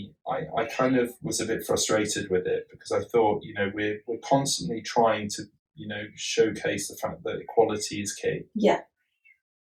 I kind of was a bit frustrated with it because I thought, we're constantly trying to, showcase the fact that equality is key. Yeah.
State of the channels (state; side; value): identical; both; correlation 1.00